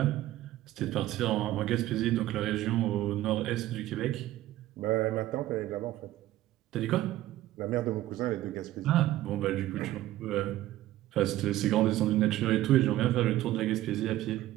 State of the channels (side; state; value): left; quieter; 15.0 dB